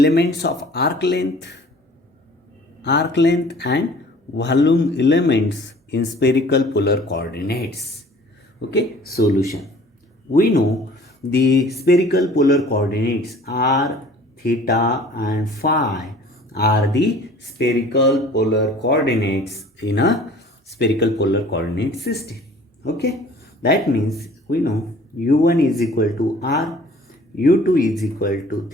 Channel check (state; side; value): normal; both; correlation 0.50